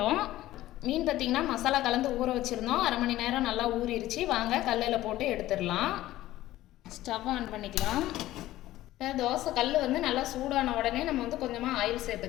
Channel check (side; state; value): right; quieter; 15.3 dB